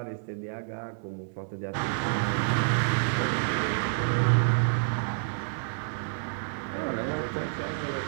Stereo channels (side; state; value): left; silent; 59 dB below the other